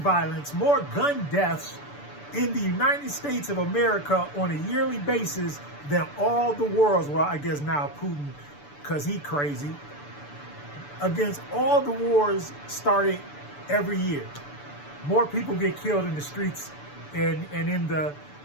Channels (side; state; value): right; late; 6.9 ms